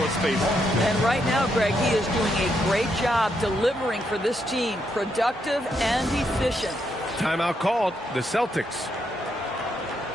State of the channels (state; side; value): normal; both; correlation 0.78